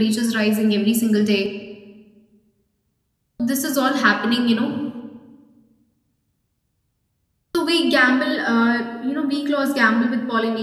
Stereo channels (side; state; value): both; identical; correlation 1.00